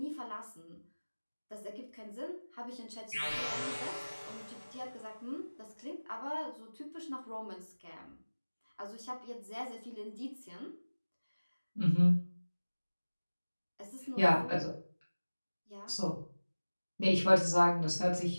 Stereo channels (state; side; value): inverted; both; correlation -1.00